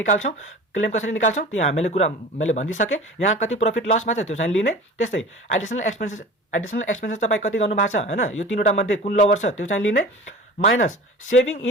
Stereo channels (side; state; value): both; normal; correlation 0.38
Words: क्लेम कसरी निकाल्छौँ त्यो मैले भनिदिइसकेँ। यहाँ कति प्रफिट लसमा छ त्यो चाहिँ लिने। त्यस्तै एडिसनल एक्सपेन्सेस तपाईँ कति गर्नु भएको छ हैन, यो तीनवटा मध्ये कुन लोवर छ त्यो चाहिँ लिने, minus saving